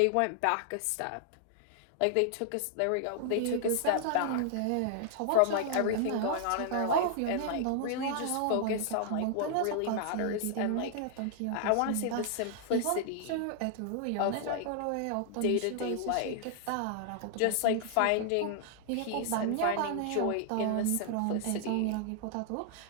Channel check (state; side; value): different; both; correlation 0.00